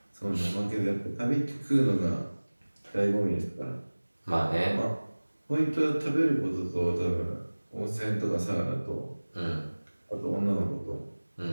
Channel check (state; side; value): inverted; both; correlation -1.00